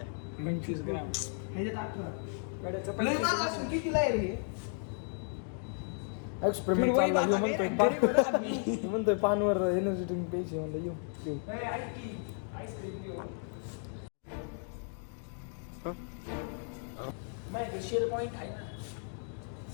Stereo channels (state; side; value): silent; right; 55 dB below the other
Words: 25 ग्राम. कितीला आहे रे? एक्सपेरिमेंट चालला. ह्यो म्हणतोय म्हणतोय पानवर एनर्जी ड्रिंक प्यायची. म्हणलं येऊ शेल पॉइंट आहे ना,